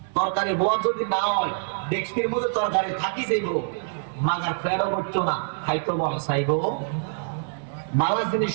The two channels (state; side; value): silent; left; digital silence